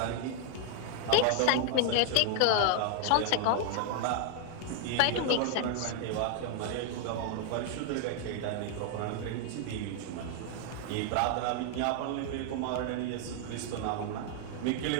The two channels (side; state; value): both; different; correlation 0.00